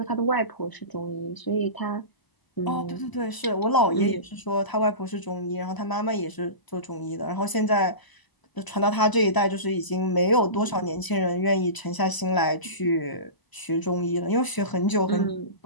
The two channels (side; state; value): right; late; 1.0 ms